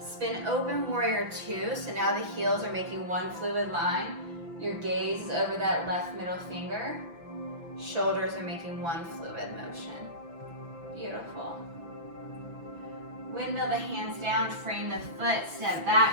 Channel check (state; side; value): late; left; 6.0 ms